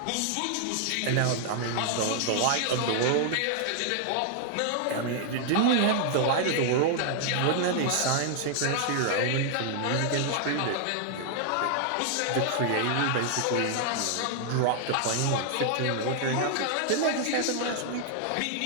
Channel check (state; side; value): different; both; correlation 0.00